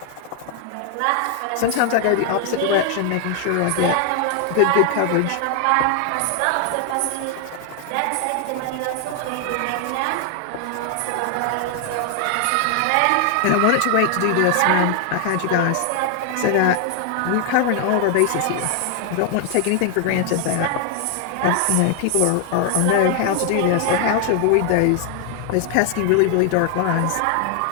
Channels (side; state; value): both; different; correlation 0.00